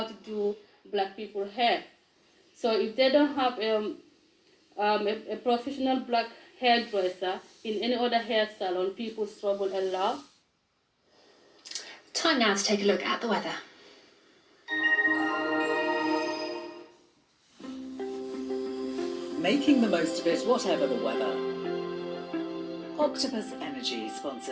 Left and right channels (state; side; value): identical; both; correlation 1.00